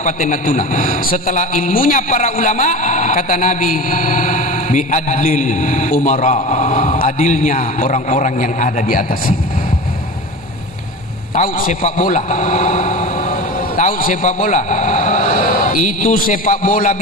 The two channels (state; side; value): normal; both; correlation 0.31